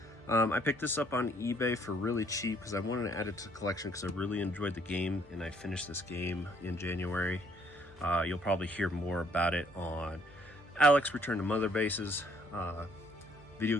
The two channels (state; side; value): normal; both; correlation 0.65